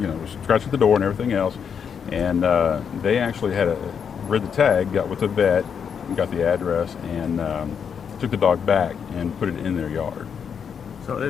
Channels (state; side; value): quieter; right; 7.1 dB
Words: scratching at the door and everything else, and they actually had read the tag, got with the vet, got the address, and took the dog back and put it in their yard.